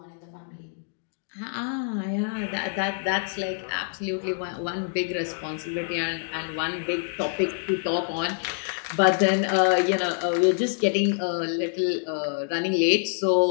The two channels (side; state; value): right; silent; digital silence